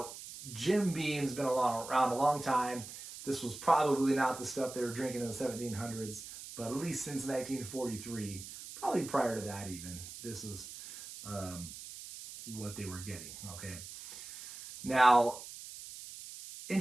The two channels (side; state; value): right; noise; hiss, 12 dB below the sound